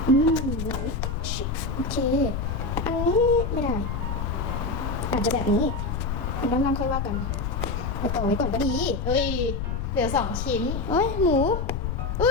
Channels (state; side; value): noise; left; rumble, 2 dB below the sound